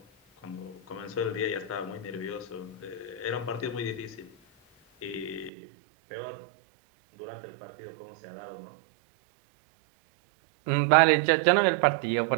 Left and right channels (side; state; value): left; drops out; at 5.5 s